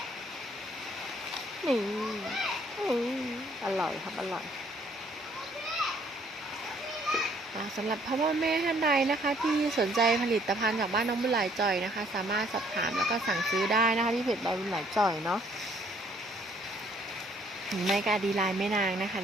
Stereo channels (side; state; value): both; normal; correlation 0.63